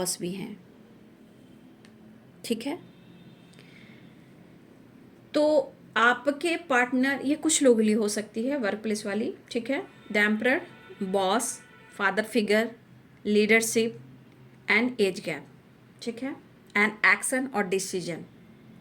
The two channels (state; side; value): identical; both; correlation 1.00